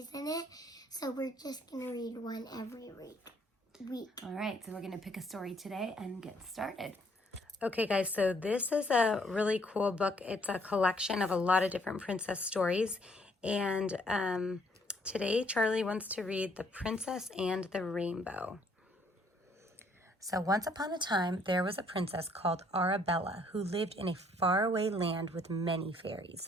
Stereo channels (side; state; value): both; normal; correlation 0.65